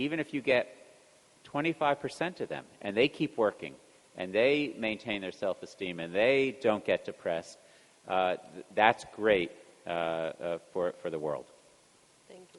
if you get 25% of them, and they keep working, and they maintain their self-esteem, and they don't get depressed, that's great for the world. Thank you.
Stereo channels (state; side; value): identical; both; correlation 1.00